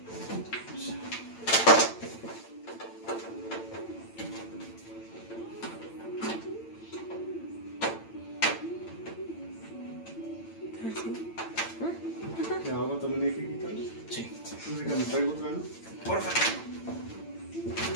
¿La agua también hay que quitarla? Sí. Entonces que me traigo otra, ¿no? Por favor.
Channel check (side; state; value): right; late; 8.9 ms